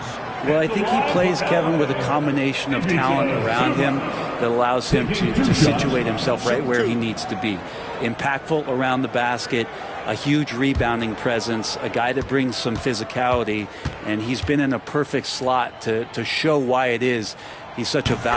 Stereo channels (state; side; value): identical; both; correlation 1.00